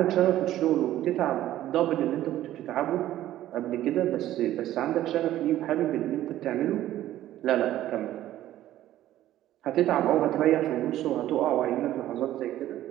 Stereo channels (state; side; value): quieter; left; 13.5 dB